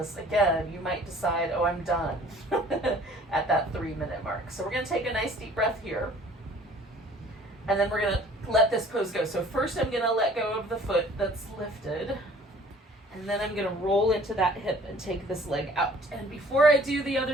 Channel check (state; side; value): normal; both; correlation 0.52